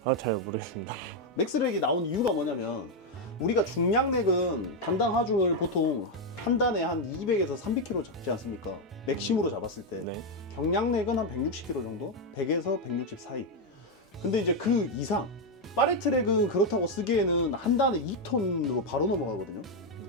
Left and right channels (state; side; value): normal; both; correlation 0.03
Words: 아, 잘 모르겠습니다. 맥스렉이 나온 이유가 뭐냐면 우리가 중량렉은 단당 하중을 보통 한 단에 한 200에서 300kg 잡지 않습니까? 맥심으로 잡았을 때. 네. 경량렉은 한 160kg 정도? 100에서 160 사이. 근데 이제 그 이상 파레트랙은 그렇다고 쓰기에는 한 단에 2톤으로 바로 넘어가거든요.